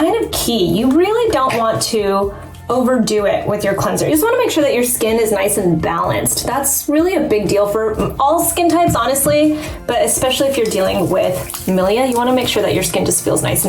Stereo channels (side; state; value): both; identical; correlation 1.00